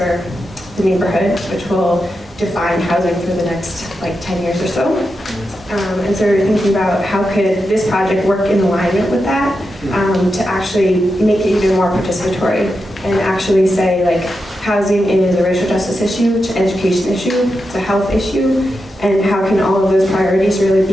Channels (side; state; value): both; normal; correlation 0.88